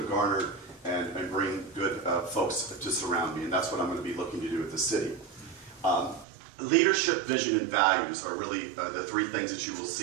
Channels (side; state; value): left; drops out; at 6.2 s